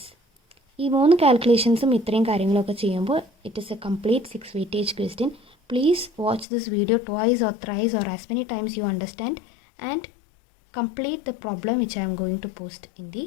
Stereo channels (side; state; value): right; drops out; at 6.5 s